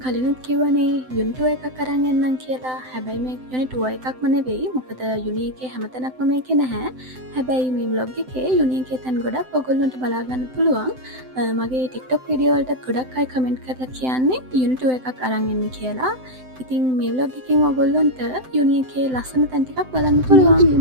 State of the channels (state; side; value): late; left; 7.8 ms